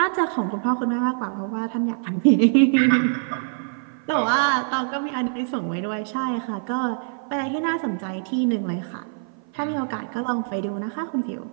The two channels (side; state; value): left; silent; 56 dB below the other